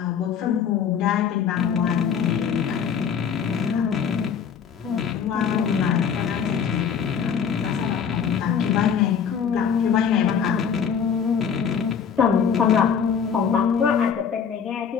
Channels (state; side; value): quieter; right; 7.2 dB